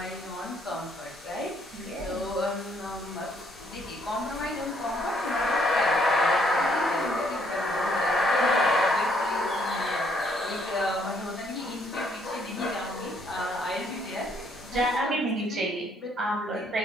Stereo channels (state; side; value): normal; both; correlation 0.68